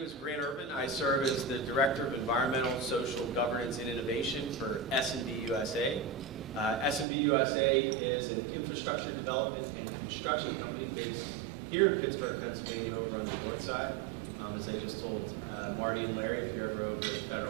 is Ervin. I serve as the Director of Environmental, Social, Governance, and Innovation for S&D USA. S&D USA is an infrastructure development and construction company based here in Pittsburgh, Pennsylvania, over on the north side. As I just told Marty and Larry, if you're ever over at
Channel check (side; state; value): left; drops out; at 7.1 s